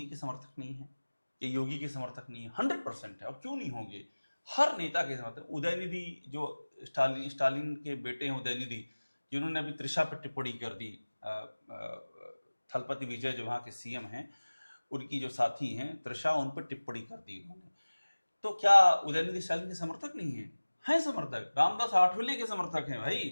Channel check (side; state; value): both; inverted; correlation -1.00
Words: के समर्थक नहीं है, ये योगी के समर्थक नहीं है, 100% है। और क्यों नहीं होंगे, हर नेता के समर्थक। उदयनिधि जो स्टालिन के बेटे हैं, उदयनिधि, जिन्होंने अभी त्रिशा पर टिप्पणी कर दी, थलपति विजय जो वहाँ के सीएम हैं, उनकी जो साथी हैं त्रिशा, उन पर टिप्पणी कर दी उन्होंने। तो क्या उदयनिधि स्टालिन के समर्थक नहीं है? हैं समर्थक। रामदास आठवले के समर्थक हैं